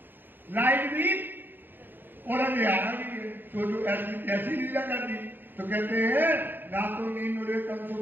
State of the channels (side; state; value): left; late; 0.093 ms